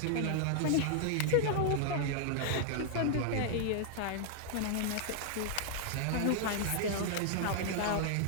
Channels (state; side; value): different; both; correlation -0.01